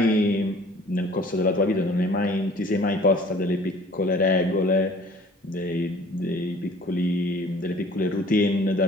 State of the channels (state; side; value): normal; both; correlation 0.51